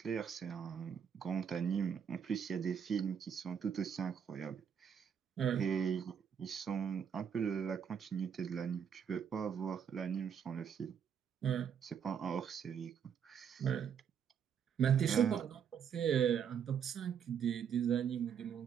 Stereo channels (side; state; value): left; quieter; 7.7 dB